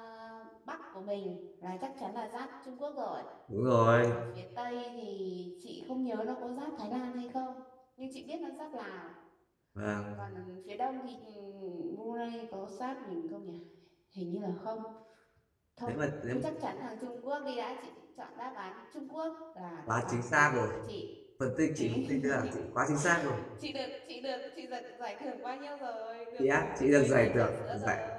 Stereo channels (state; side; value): identical; both; correlation 1.00